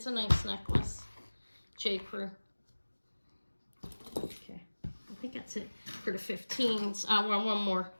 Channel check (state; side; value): inverted; both; correlation -1.00